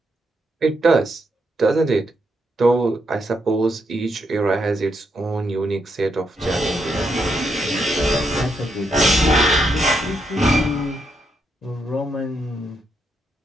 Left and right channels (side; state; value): both; normal; correlation 0.79